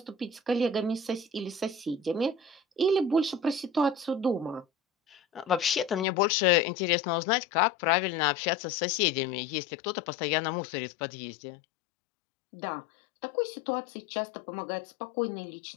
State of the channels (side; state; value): right; drops out; at 6.1 s